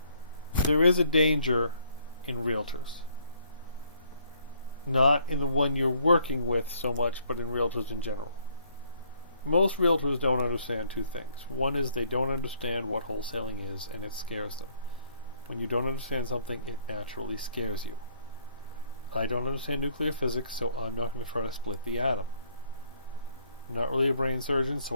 There is a danger in realtors. Not in the one you're working with so much, but in realtors in general. Most realtors don't understand two things. One is they don't understand what wholesaling is, and it scares them. When you don't understand something, it naturally scares you. I don't understand nuclear physics, so I'm not going to try to split the atom. I'm not really a brain surgeon,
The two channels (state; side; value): inverted; both; correlation -0.65